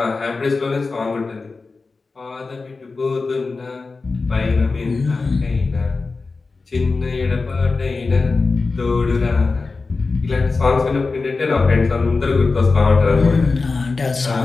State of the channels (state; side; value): quieter; right; 4.0 dB